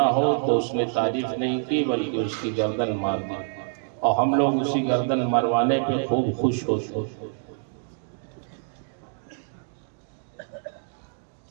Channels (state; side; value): silent; left; 61 dB below the other